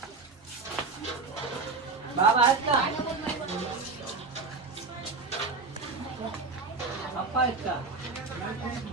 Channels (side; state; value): left; quieter; 4.1 dB